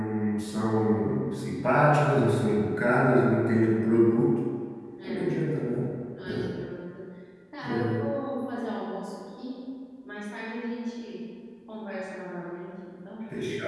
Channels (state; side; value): identical; both; correlation 1.00